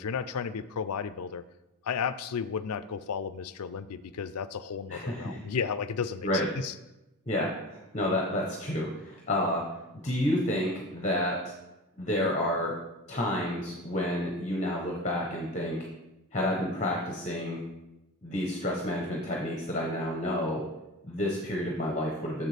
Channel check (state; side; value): normal; both; correlation 0.28